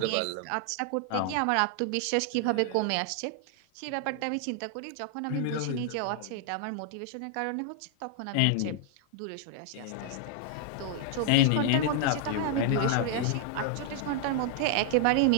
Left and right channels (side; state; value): both; different; correlation 0.00